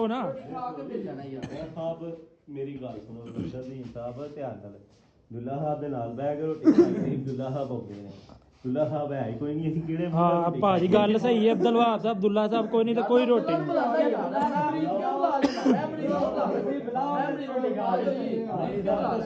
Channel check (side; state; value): both; identical; correlation 1.00